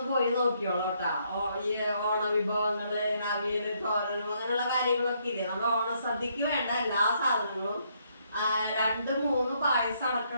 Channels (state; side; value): inverted; both; correlation -0.72